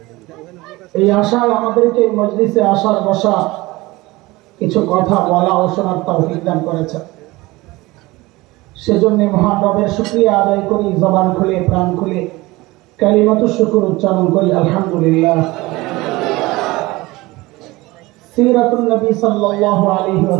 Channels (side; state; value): left; quieter; 20.9 dB